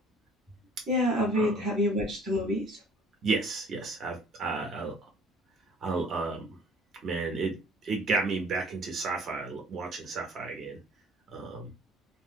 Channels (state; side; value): normal; both; correlation 0.53